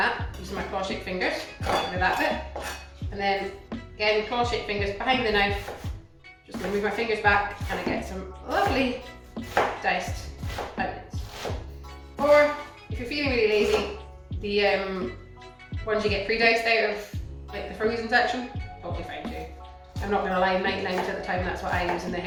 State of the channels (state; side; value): identical; both; correlation 1.00